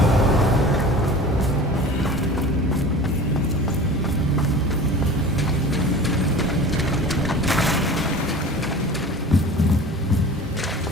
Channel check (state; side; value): normal; both; correlation 0.38